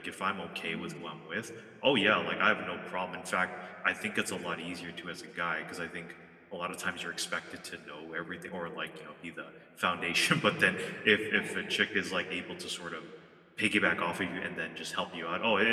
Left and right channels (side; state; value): both; identical; correlation 1.00